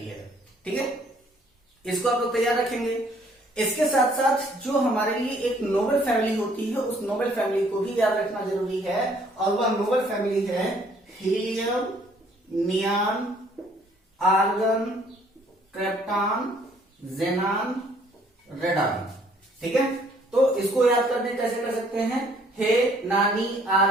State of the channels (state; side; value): normal; both; correlation 0.61